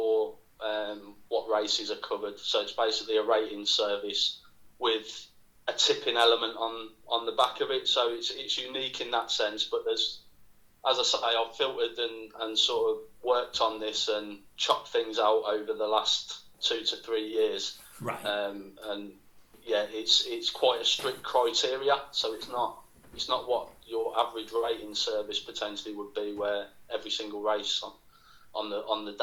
what races are covered. So it's basically a rating service with a tipping element on the back of it. So it's unique in that sense. But there's, as I say, I've filtered and sort of worked on this and chopped things out over the last 2 to 3 years. Right. And yeah, it's quite a strict criteria. So it's not what your average rating service potentially would be, where every single race on the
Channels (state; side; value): identical; both; correlation 1.00